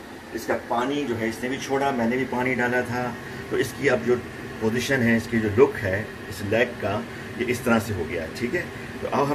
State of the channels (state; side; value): identical; both; correlation 1.00